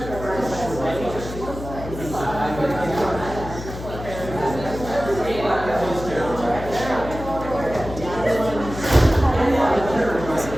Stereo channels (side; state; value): left; noise; hum, 10 dB below the sound